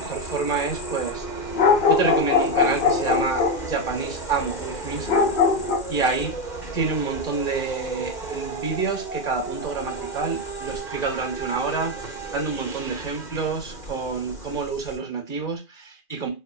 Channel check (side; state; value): right; late; 2.4 ms